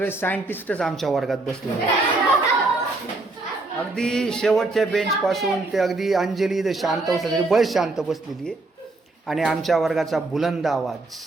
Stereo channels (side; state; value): left; quieter; 3.2 dB